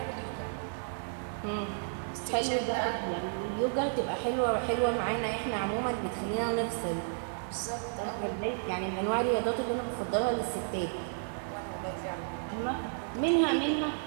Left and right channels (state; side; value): silent; left; 56 dB below the other